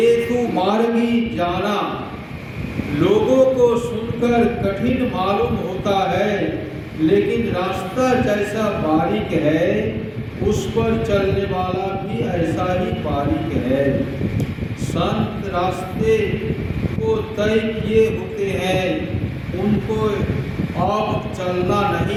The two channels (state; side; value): identical; both; correlation 1.00